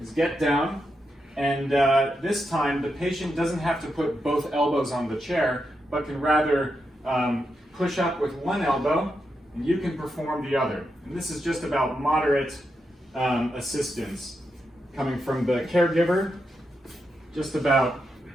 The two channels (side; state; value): both; normal; correlation 0.85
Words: is get down, and this time the patient doesn't have to put both elbows on the chair, but can rather push up with one elbow, and you can perform the other. And this is just about moderate assistance coming from the caregiver, just about